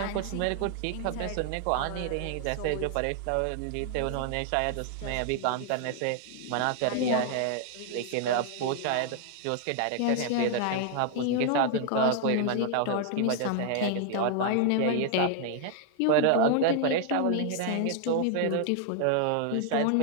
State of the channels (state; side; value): different; both; correlation 0.00